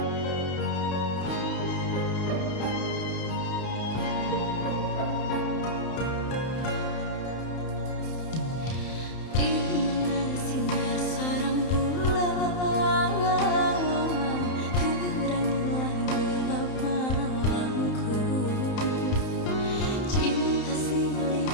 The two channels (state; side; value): late; right; 31 ms